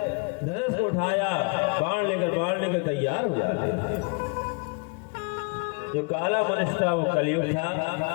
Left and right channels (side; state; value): right; quieter; 32.3 dB